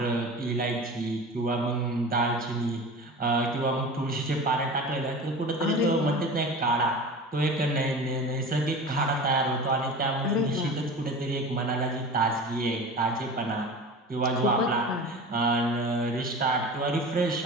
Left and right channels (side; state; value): both; normal; correlation 0.34